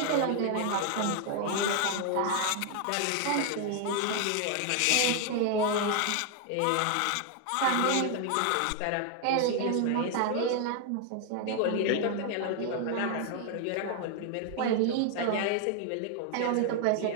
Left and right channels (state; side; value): different; both; correlation 0.00